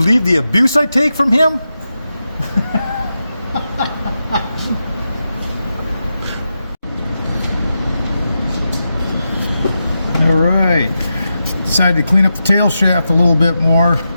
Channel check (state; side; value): inverted; both; correlation -0.89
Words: the abuse I take from him? Alright, decided to clean up the tail shaft a little bit more